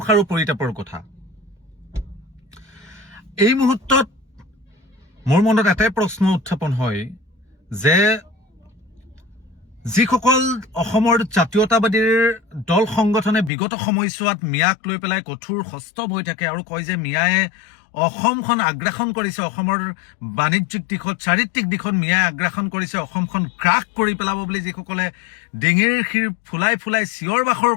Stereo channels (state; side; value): drops out; right; at 13.5 s